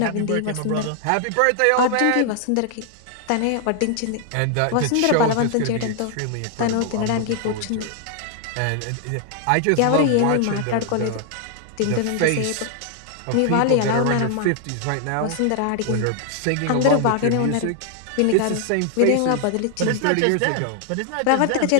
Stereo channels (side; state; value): both; different; correlation 0.00